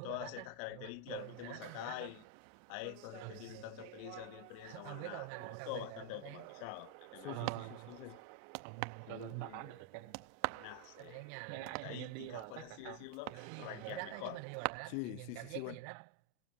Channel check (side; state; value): both; different; correlation 0.00